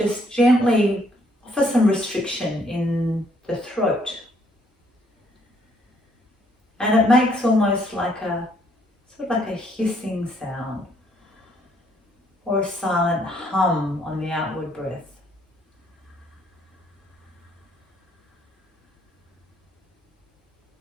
gently offer some restriction in the throat. And it makes almost like a, sort of like a hissing sound or a silent hum on the outward breath.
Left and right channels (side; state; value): both; normal; correlation 0.67